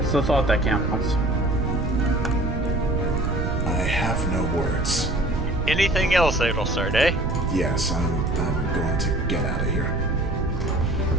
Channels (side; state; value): right; noise; rumble, 2 dB below the sound